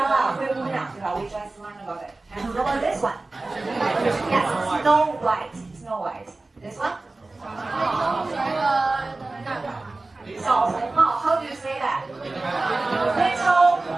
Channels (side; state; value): left; quieter; 3.2 dB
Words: 灰姑娘，对吧？ We just learned about it. And how about this one? Yes, Snow White. Snow White. This one? 小红帽. How do you say that? Little